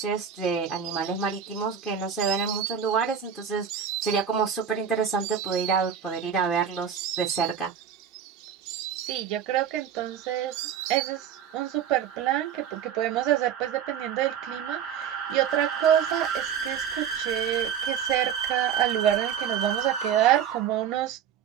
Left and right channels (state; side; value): quieter; left; 8.4 dB